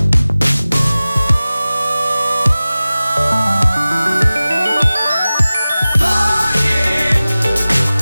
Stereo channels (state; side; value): inverted; both; correlation -0.97